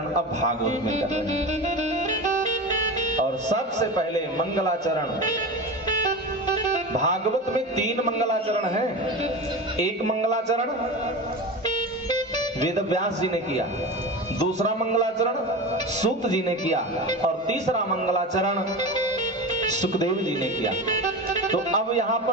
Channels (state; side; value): normal; both; correlation 0.27